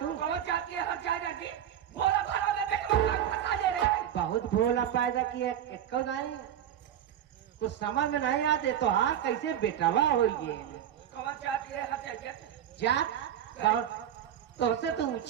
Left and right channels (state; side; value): quieter; left; 10.2 dB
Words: कहो जाती है हर जगह की बोला भाड़ा में देख फंसा ले रहे हैं। बहुत भोला पैदा किया कब नहीं कुछ समझ में नहीं आते तो हार कैसे बेटावा हो गए। कहो जाती है हर जगह जात तो से तो